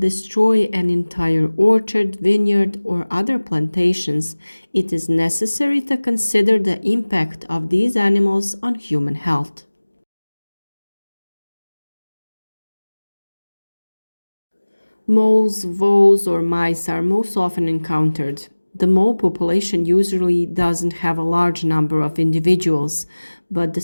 an entire orchard, vineyard, or other plantations, it is necessary to consider the impact of these animals on human health. Moles, voles, or mice are most often encountered. The mole population usually doesn't have a large number of individuals, but the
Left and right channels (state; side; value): inverted; both; correlation -1.00